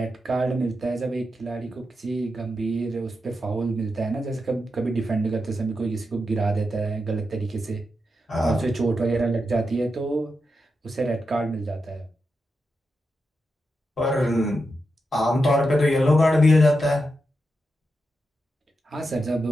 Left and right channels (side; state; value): both; normal; correlation 0.87